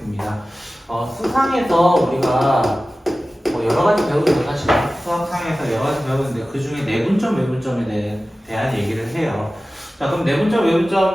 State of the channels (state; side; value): normal; both; correlation 0.96